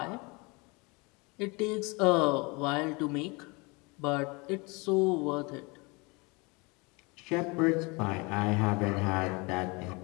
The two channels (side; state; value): right; quieter; 27.6 dB